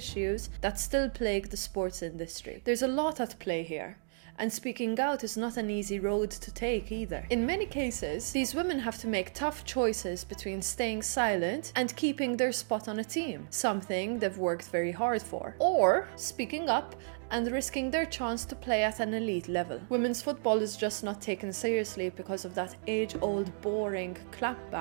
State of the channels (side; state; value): left; silent; digital silence